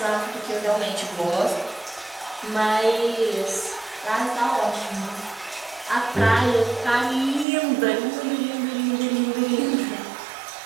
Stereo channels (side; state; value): left; drops out; at 7.5 s